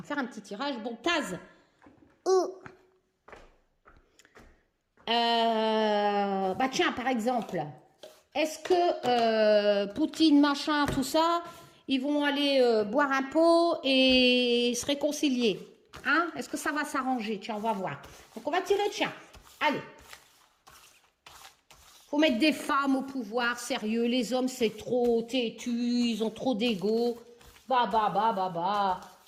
faire un petit tirage. Bon, Taz. Tiens, par exemple, est-ce que Poutine, machin, tout ça... Ils vont aller boire un pot et se réconcilier. Hein? Est-ce que ça va s'arranger? Tiens, on va voir. Donc, on va tirer, tiens. Allez. Faut mettre des femmes au pouvoir, sérieux. Les hommes, c'est trop têtu, ils ont trop d'ego. Bah, bah, bah, bah, bah.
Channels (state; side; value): identical; both; correlation 1.00